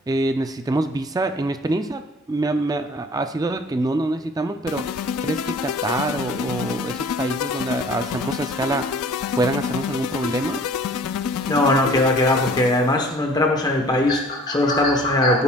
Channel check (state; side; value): normal; both; correlation 0.50